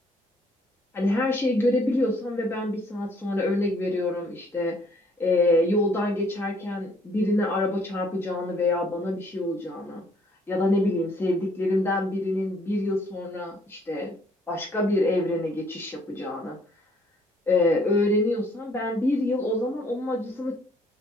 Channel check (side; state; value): both; normal; correlation 0.63